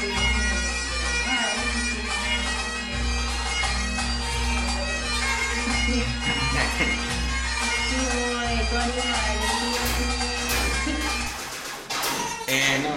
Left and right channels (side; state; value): both; identical; correlation 1.00